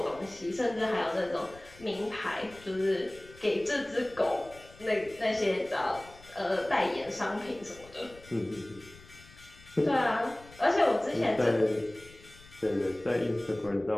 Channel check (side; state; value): left; noise; rumble, 22 dB below the sound